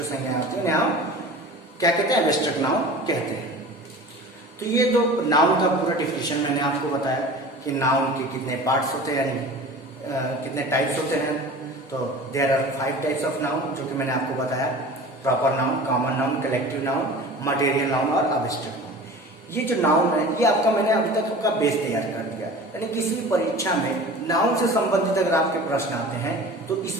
संज्ञा होती है, उन्हें हम क्या कहते हैं, एब्स्ट्रैक्ट नाउन कहते हैं। तो ये तो नाउन का पूरा डिफिनेशन मैंने आपको बताया कि नाउन के कितने पार्ट्स होते हैं, यानी कितने टाइप्स होते हैं। तो there are 5 types of noun, जो कि मैंने आपको बताया, proper noun, common noun, collective noun, material noun और एब्स्ट्रैक्ट नाउन। ये जो नाउन है ये आपका, मैंने अभी तक आपका बेस तैयार कर दिया, यानी किसी परीक्षा में नाउन से संबंधित अगर आपके प्रश्न आते हैं तो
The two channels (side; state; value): both; normal; correlation 0.38